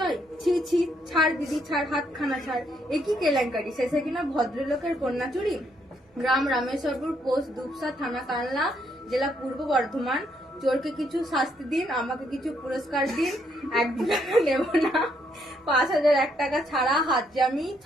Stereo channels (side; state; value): both; normal; correlation 0.73